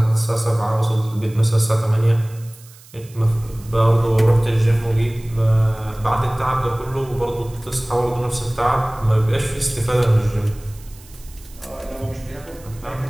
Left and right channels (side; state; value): right; noise; hiss, 23 dB below the sound